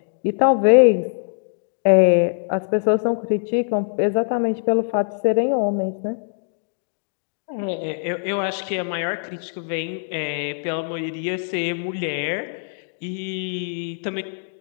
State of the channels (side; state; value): right; silent; digital silence